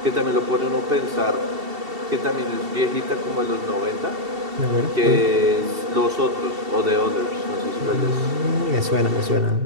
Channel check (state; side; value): late; left; 2.7 ms